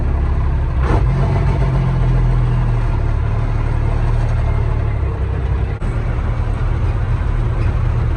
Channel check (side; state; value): both; identical; correlation 1.00